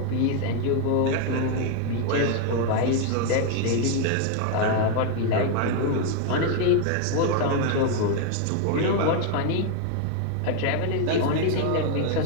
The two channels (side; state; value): both; different; correlation 0.01